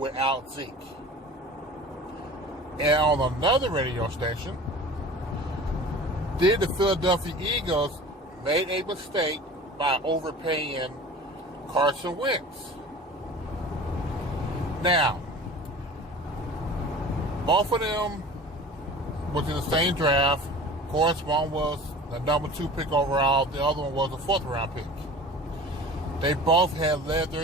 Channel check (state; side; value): normal; both; correlation 0.40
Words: Zeke? And on another radio station, did the Philadelphia Eagles make a mistake by overpaying Carson Wentz? Now, both of them was in the same draft. Of course, one was the number 2 pick overall. The other one was a 4th round pick. They both had led